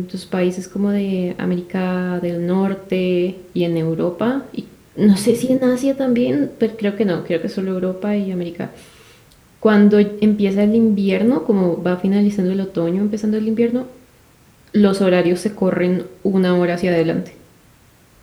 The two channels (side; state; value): both; identical; correlation 1.00